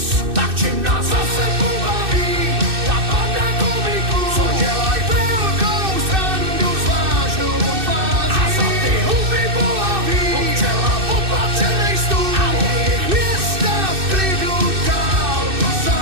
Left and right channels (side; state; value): left; late; 2.6 ms